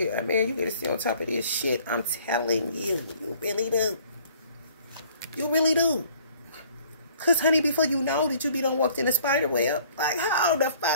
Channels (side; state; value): both; inverted; correlation -0.57